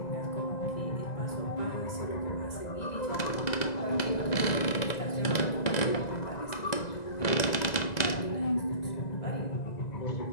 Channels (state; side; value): late; right; 2.0 ms